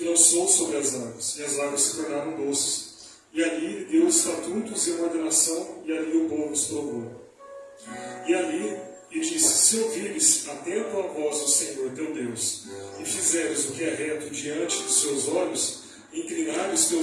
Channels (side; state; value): both; identical; correlation 1.00